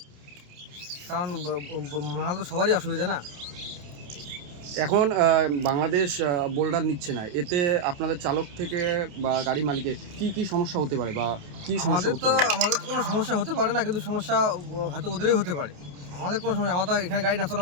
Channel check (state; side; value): late; left; 28 ms